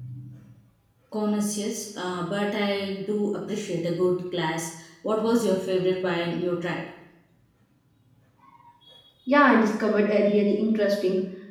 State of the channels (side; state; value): both; identical; correlation 1.00